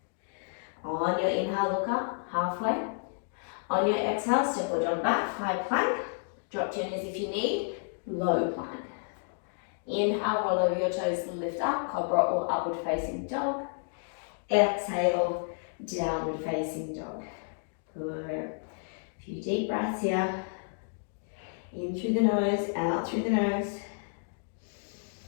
On your inhale, look up, halfway. On your exhale, step or jump back, high plank. Drop to your knees if you need, low plank. Inhale, roll over your toes, lift up, cobra or upward facing dog. Exhale, downward facing dog. Good. A few deep breaths here. In through the nose, out through the nose.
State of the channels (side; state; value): right; silent; digital silence